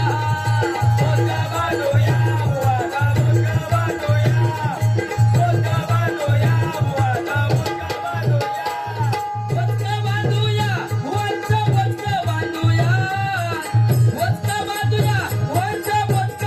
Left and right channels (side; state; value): both; identical; correlation 1.00